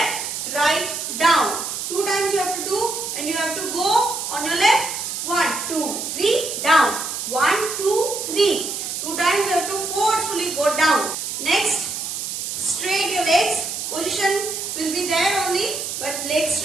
right, down. 2 times you have to do and you have to go on your left. 1, 2, 3, down. 1, 2, 3. 2 times you have to forcefully go down. Next, straight your legs. Position will be there only, but legs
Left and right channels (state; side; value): noise; right; hiss, 4 dB below the sound